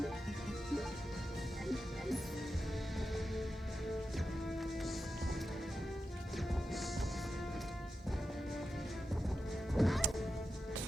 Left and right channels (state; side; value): normal; both; correlation 0.90